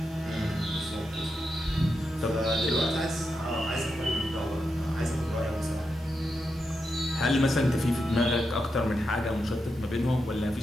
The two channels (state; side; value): normal; both; correlation 0.86